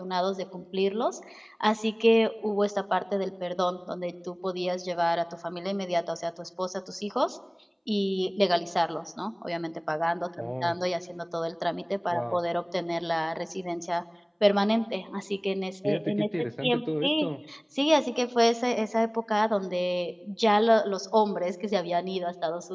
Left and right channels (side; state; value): both; identical; correlation 1.00